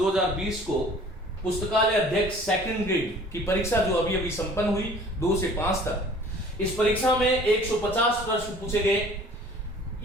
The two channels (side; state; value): both; normal; correlation 0.50